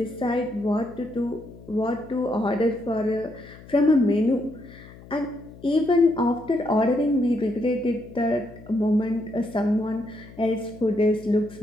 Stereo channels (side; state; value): left; noise; hum, 19 dB below the sound